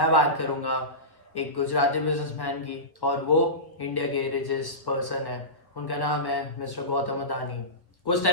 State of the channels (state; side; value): late; right; 1.3 ms